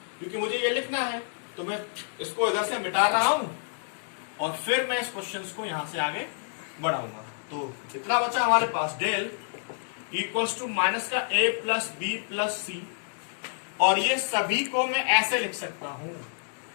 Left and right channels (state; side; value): silent; right; digital silence